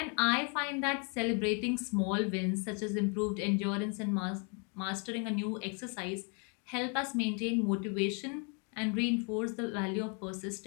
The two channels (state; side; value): quieter; right; 37.1 dB